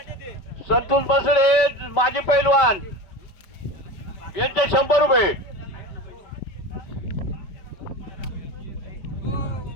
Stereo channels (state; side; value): late; right; 5.2 ms